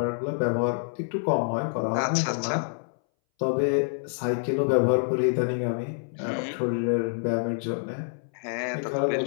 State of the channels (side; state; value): right; silent; 60 dB below the other